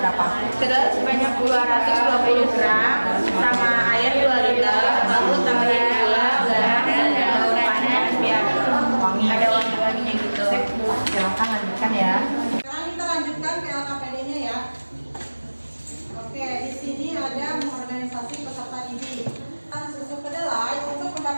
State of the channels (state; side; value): inverted; both; correlation -1.00